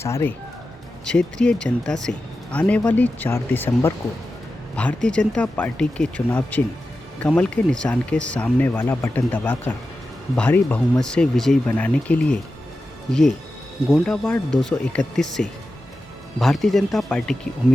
क्षेत्रीय जनता से आने वाली 4 दिसंबर को भारतीय जनता पार्टी के चुनाव चिन्ह कमल के निशान के सामने वाला बटन दबाकर भारी बहुमत से विजयी बनाने के लिए ये गोंडा वार्ड 231 से भारतीय जनता पार्टी की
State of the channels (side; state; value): both; normal; correlation 0.92